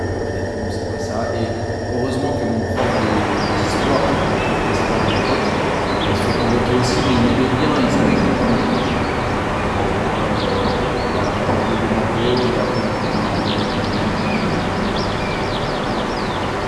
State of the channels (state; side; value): identical; both; correlation 1.00